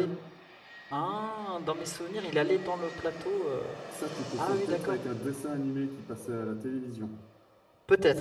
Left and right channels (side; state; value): both; identical; correlation 1.00